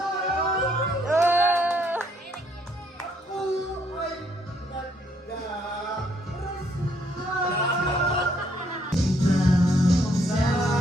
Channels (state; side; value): normal; both; correlation 0.69